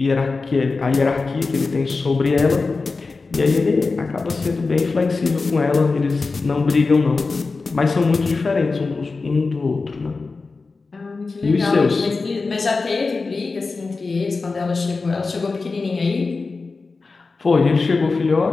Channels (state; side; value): quieter; right; 4.0 dB